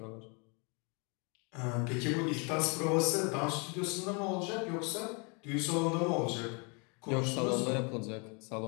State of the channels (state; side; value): quieter; right; 33.5 dB